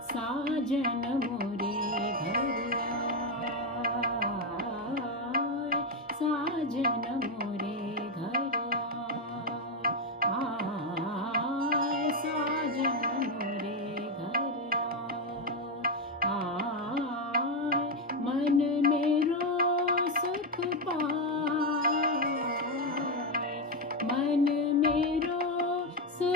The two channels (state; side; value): normal; both; correlation 0.07